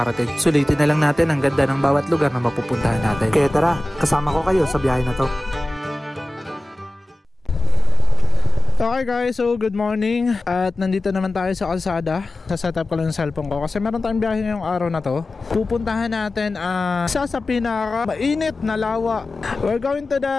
Sulitin na lang natin ang ganda ng bawat lugar na mapupuntahan natin. Kaya tara, kasama ko kayo sa biyahe na to. Okay guys, so good morning. At nandito naman tayo sa kalsada. Sa-setup ko lang yung cellphone ko kasi meron tayong biyahe ngayong araw na to. Pupuntahan natin isa sa pinaka mainit na lawa. We're going to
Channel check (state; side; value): normal; both; correlation 0.97